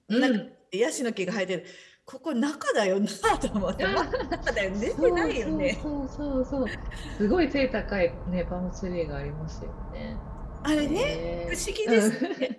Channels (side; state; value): both; identical; correlation 1.00